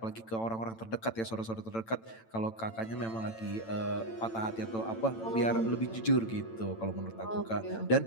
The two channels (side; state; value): right; late; 9.0 ms